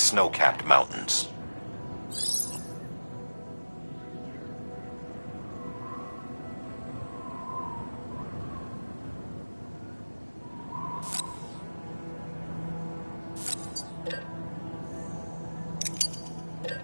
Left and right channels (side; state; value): both; inverted; correlation -1.00